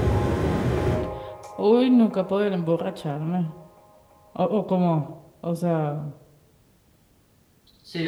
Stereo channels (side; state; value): both; identical; correlation 1.00